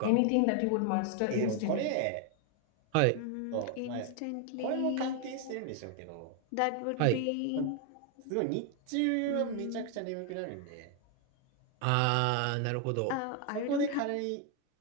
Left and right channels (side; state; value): both; different; correlation 0.01